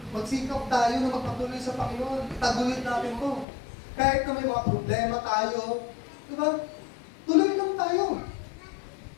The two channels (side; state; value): right; drops out; at 3.5 s